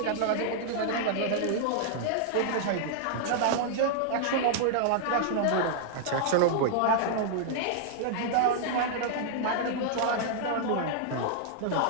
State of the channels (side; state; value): both; different; correlation -0.01